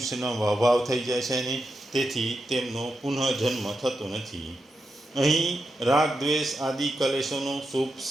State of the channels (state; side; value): normal; both; correlation 0.87